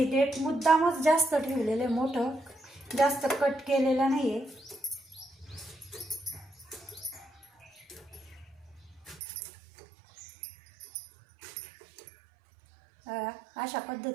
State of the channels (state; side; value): drops out; left; at 9.2 s